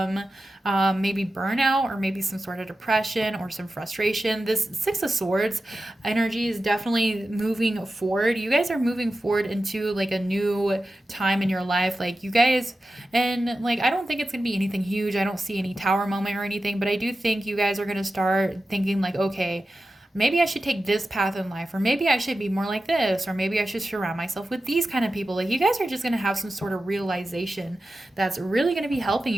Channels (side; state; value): both; normal; correlation 0.93